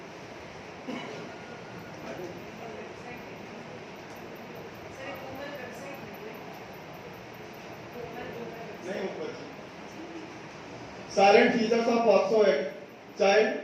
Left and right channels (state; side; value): identical; both; correlation 1.00